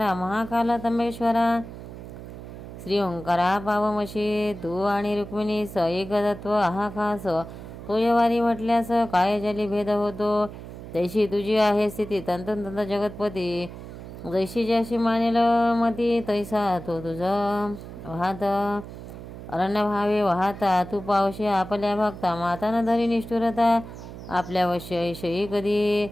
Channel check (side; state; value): right; noise; hum, 13 dB below the sound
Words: महाकाला तंबेश्वरा, श्री ओंकारा पावमशी, तू आणि रुक्मिणी स एक तत्व आहा खास, तो यवारी म्हटल्यास काय जली भेद होतो, तैशी तुझी आहे स्थिती तंतंत जगतपती, जैशी ज्याशी मानेल मती तैसा तो तुझा वाहत, अरण्य भावे वाहता तू पावशी आपल्या भक्ता, माता न धरी निष्ठुरता आपल्या वश्यही कधी,